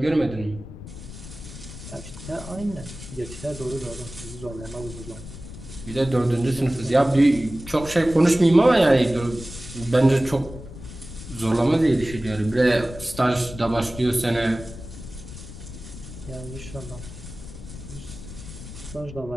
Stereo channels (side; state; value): left; noise; rumble, 13 dB below the sound